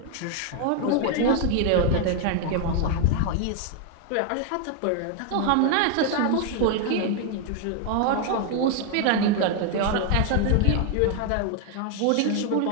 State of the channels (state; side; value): different; both; correlation 0.01